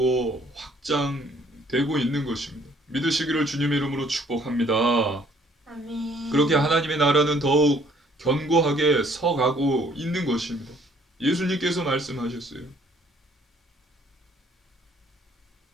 확장되고 있는 것입니다. 믿으시기를 주님의 이름으로 축복합니다. 아멘. 그렇게 하나님의 나라는 더욱 견고하게 서가고 있는 것입니다. 예수님께서 말씀하셨어요.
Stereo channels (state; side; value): normal; both; correlation 0.61